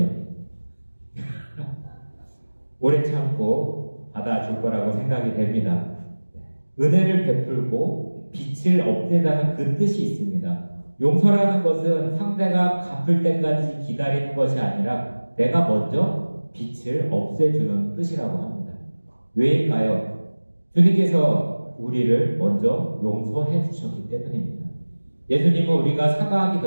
오래 참고 받아줄 거라고 생각이 됩니다. 은혜를 베풀고 빛을 없애자는 그 뜻이 있습니다. 용서라는 것은 상대가 갚을 때까지 기다리는 것이 아니라 내가 먼저 빛을 없애주는 뜻이라고 합니다. 왜일까요? 주님께서 우리를 먼저 용서해 주셨기 때문입니다. 예수님은 우리가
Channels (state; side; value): inverted; both; correlation -1.00